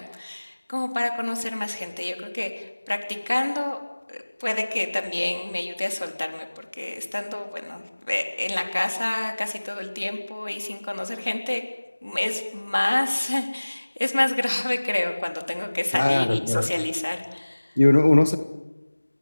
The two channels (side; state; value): both; inverted; correlation -1.00